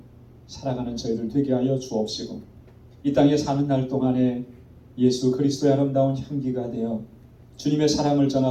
살아가는 저희들 되게 하여 주옵시고 이 땅에 사는 날 동안에 예수 그리스도의 아름다운 향기가 되어 주님의 사랑을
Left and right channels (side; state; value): both; identical; correlation 1.00